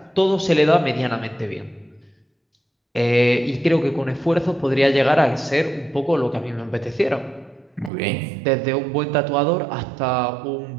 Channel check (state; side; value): drops out; left; at 7.9 s